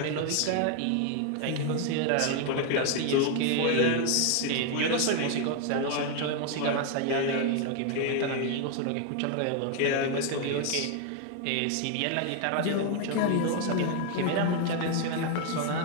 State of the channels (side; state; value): both; different; correlation 0.01